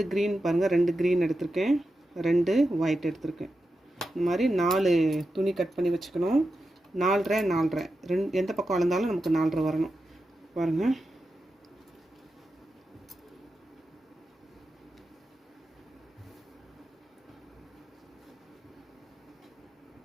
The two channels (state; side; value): normal; both; correlation 0.90